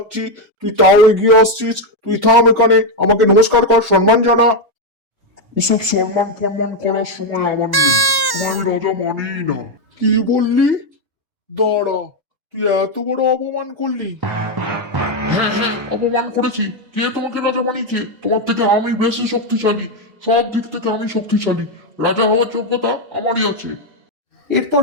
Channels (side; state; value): left; late; 1.1 ms